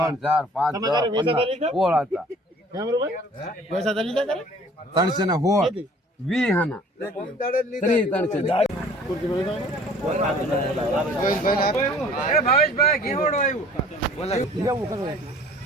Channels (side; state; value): both; normal; correlation 0.51